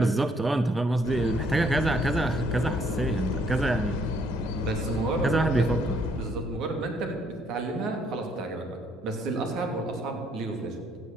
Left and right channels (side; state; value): both; normal; correlation 0.67